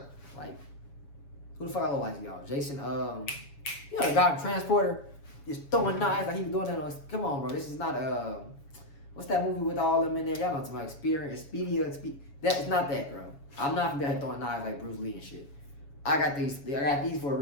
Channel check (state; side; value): late; right; 7.2 ms